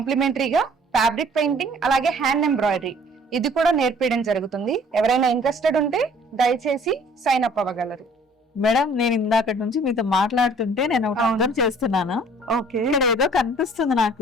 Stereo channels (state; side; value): normal; both; correlation 0.54